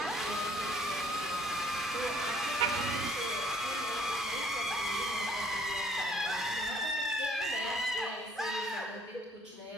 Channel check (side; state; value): both; normal; correlation 0.60